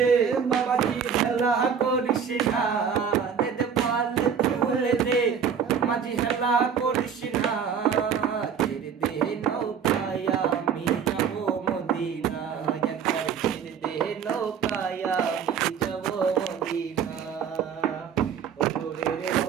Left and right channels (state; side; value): quieter; left; 7.2 dB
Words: মাঝি হেলা করিস না, দে পালে তুলে দে মাঝি হেলা করিস না, ছেড়ে দে নৌকায় আমি যাব মদিনা, একবার ছেড়ে দে নৌকায় আমি যাব মদিনা। নূরের